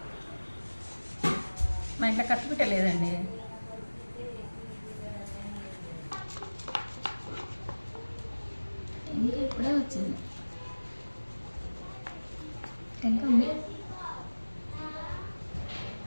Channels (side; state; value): both; inverted; correlation -1.00